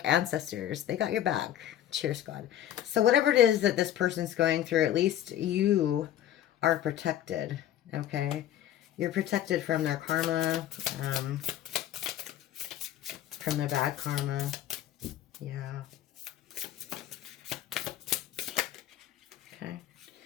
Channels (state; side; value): quieter; right; 11.7 dB